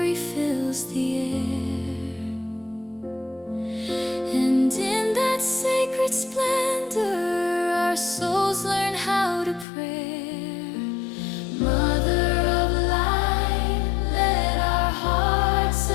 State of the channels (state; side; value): drops out; right; at 9.7 s